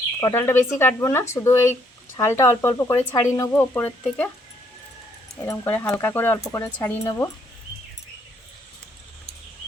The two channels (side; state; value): both; normal; correlation 0.70